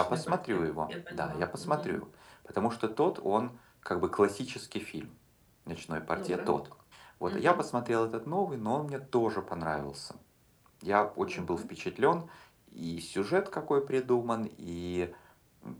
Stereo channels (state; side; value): identical; both; correlation 1.00